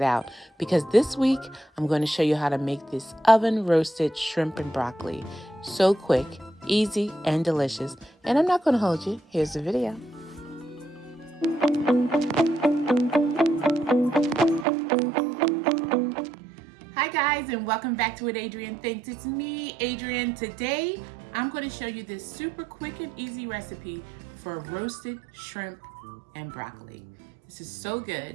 out. Because this week, I'm going to show you how to make this oven roasted shrimp and broccoli. So quick, easy, and delicious. And I'm not going to hold you. Here's the video. Hi guys, and welcome back to What Adrianne Thinks. It's me, Adrianne. Today, I'm going to show you this super quick and easy recipe for roasted shrimp and broccoli. This is so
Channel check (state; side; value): drops out; left; at 14.7 s